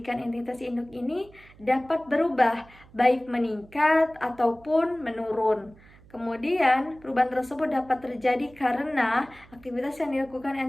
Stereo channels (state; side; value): noise; right; hum, 25 dB below the sound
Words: entitas induk ini dapat berubah, baik meningkat ataupun menurun. Kemudian, perubahan tersebut dapat terjadi karena aktivitas yang dilakukan